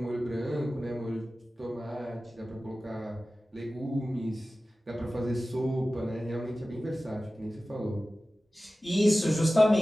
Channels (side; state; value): both; normal; correlation 0.96